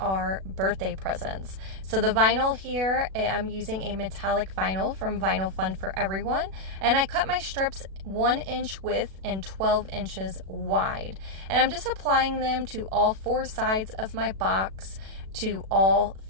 birthday presents. So the vinyl here, I'm using a metallic vinyl from Vinyl Fun for Everyone, and I cut my strips 1 inch width and 12 inches wide. And I'm just applying them to all 4 sides of my box, to all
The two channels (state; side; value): late; left; 37 ms